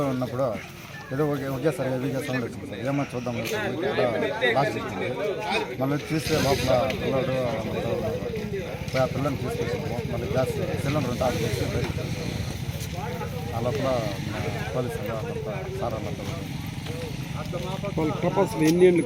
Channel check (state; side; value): identical; both; correlation 1.00